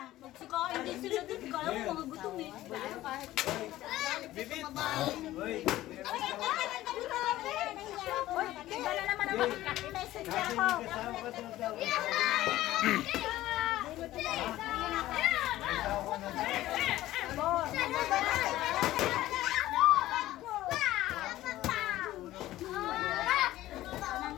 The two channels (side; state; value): right; quieter; 15.4 dB